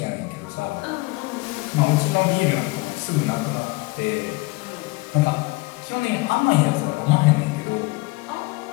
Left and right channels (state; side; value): quieter; right; 23.6 dB